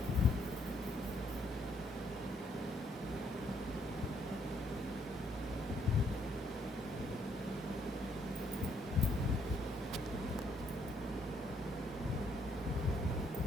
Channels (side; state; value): both; normal; correlation 0.70